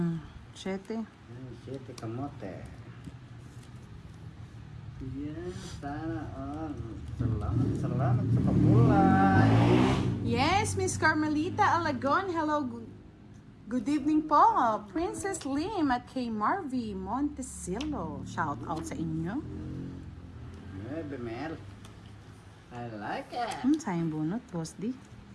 7. Siyete kamote. Yan, sana all. Salamat sa pagkulay. Yes, Miss Carmelita Alagon. Hello. Good evening po. Princess Lim at kay Marvy Montecillo. Shout out sa inyo. Bemel. I like it. Sayang bunot, Boss D.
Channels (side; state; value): both; identical; correlation 1.00